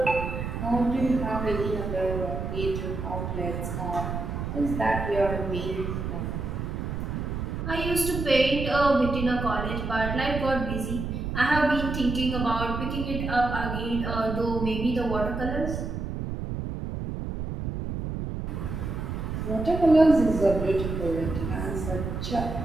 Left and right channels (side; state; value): right; noise; rumble, 4 dB below the sound